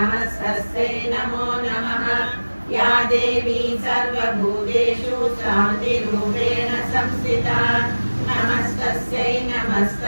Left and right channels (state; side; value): inverted; both; correlation -1.00